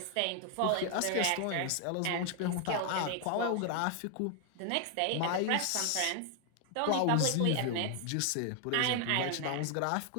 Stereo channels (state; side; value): different; both; correlation 0.00